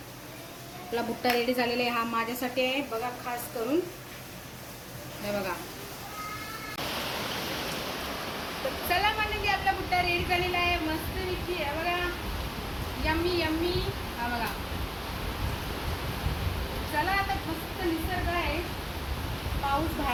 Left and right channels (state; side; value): identical; both; correlation 1.00